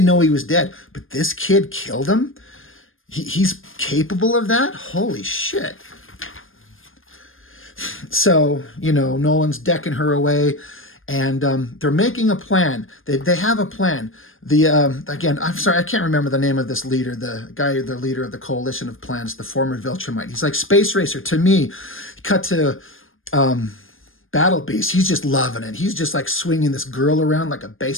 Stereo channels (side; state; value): right; late; 0.59 ms